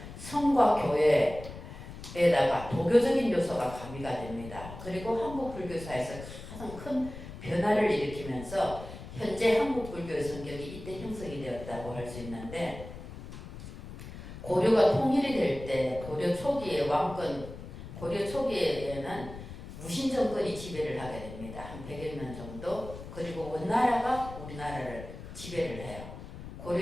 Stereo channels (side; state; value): left; noise; rumble, 12 dB below the sound